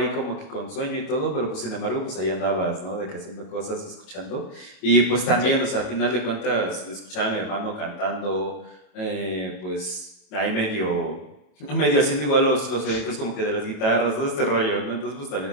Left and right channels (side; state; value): right; late; 27 ms